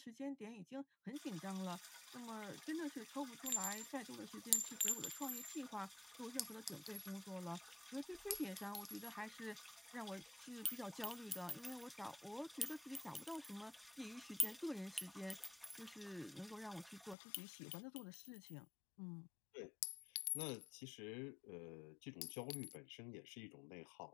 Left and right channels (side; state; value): right; drops out; at 17.2 s